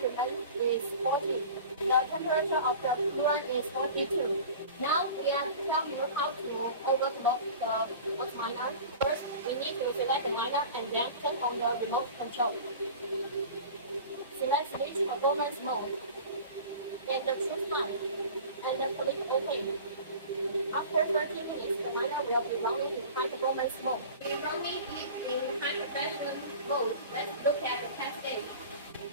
is 40. The temperature of the coolant is 42. Now we are telling you how to overclock the bus miner. First, we need to select the miner and then turn on the remote control. Select switch performance mode and choose time and then click OK. After 30 minutes, the miner will be running in high performance mode. We are running in high compression mode. Let's look at the test stage.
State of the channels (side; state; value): both; inverted; correlation -0.38